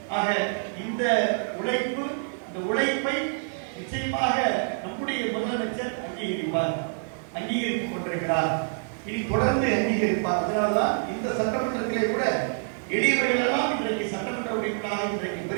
ஆக இந்த உழைப்பை நிச்சயமாக நம்முடைய முதலமைச்சர் அங்கீகரித்துக் கொண்டிருக்கிறார். இனி தொடர்ந்து அங்கீகரிப்பார். அதனால்தான்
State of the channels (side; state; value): left; silent; digital silence